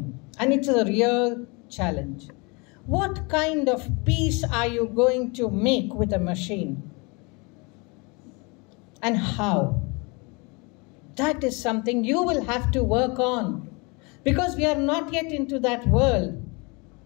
And it's a real challenge. What kind of peace are you going to make with a machine? And how? That is something you will have to work on. Because we are not yet into that world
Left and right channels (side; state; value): right; quieter; 29.1 dB